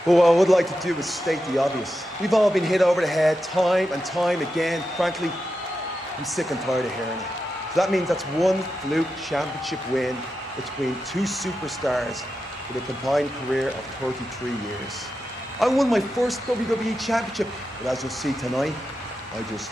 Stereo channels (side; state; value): both; normal; correlation 0.89